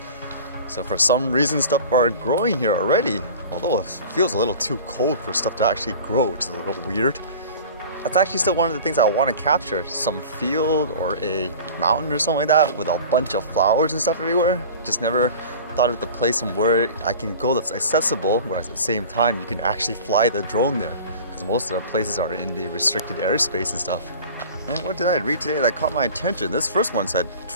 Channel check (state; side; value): inverted; both; correlation -0.39